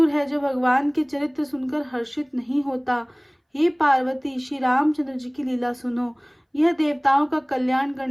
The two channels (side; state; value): both; identical; correlation 1.00